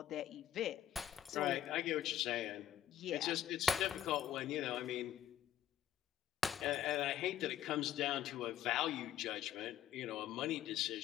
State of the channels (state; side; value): quieter; right; 10.8 dB